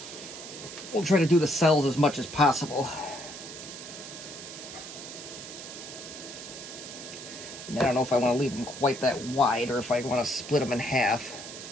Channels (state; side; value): noise; right; hiss, 11 dB below the sound